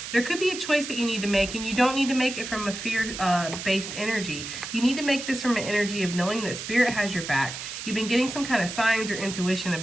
There could be a choice that you need to make, and you don't need to make it from a fear-based energy. You need to make this from an energy of knowing that Spirit has your back. You've been getting some kind of signs or intuition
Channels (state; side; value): noise; right; hiss, 8 dB below the sound